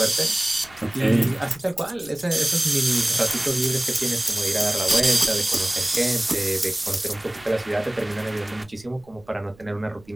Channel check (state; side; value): noise; right; rumble, 26 dB below the sound